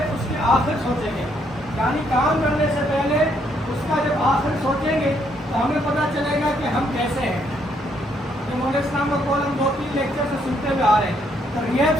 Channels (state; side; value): normal; both; correlation 0.72